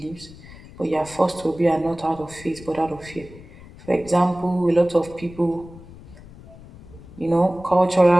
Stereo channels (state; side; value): noise; left; rumble, 19 dB below the sound